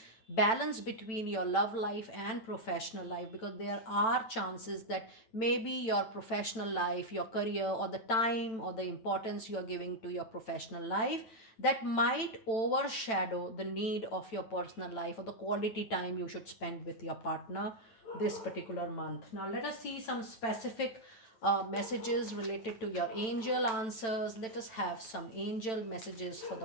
balance between your love life and professional life, because there are chances that maybe your professional life, your career, or the time or the importance you are giving to your professional life, that might overshadow the need of your personal life or the quality time you should spend with your partner this particular month. Now, let us see some specific messages related to your angel answers. Let us have some angel messages for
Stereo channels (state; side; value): late; right; 9.0 ms